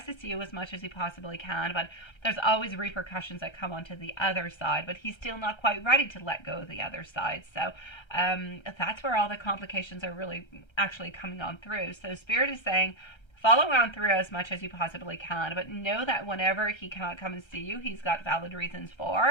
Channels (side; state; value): right; late; 1.3 ms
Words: to see you as much as he possibly can, but there's always repercussions that come onto the other side, but he's still not quite ready to let go of the other side. So that's where all the complications are really actually coming on through. So Spirit is saying, follow on through as much as you possibly can, but know that whenever he cannot come and see you, he's got valid reasons